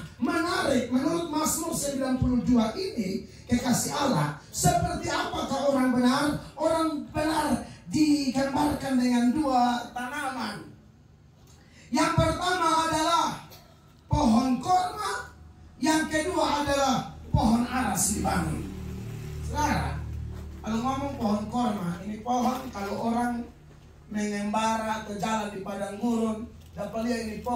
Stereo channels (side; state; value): both; identical; correlation 1.00